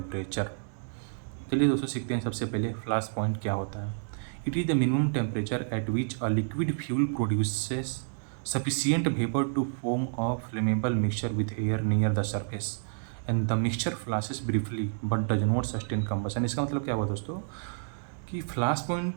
चलिए दोस्तों, सीखते हैं सबसे पहले फ्लैश पॉइंट क्या होता है। It is the minimum temperature at which a liquid fuel produces sufficient vapour to form a flammable mixture with air near the surface and the mixture flashes briefly but does not sustain combustion. इसका मतलब क्या हुआ दोस्तों कि flash point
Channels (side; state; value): left; silent; digital silence